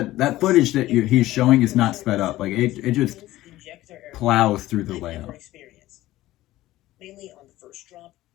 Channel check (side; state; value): right; quieter; 16.1 dB